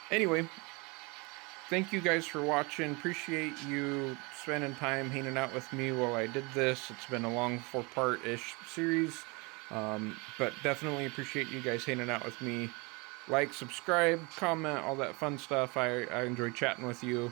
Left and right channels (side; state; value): left; quieter; 28.0 dB